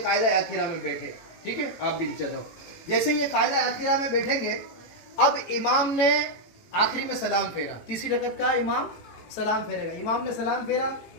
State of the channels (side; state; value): right; late; 18 ms